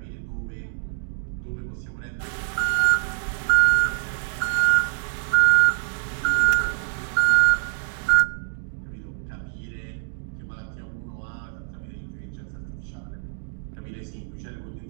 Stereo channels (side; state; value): left; silent; digital silence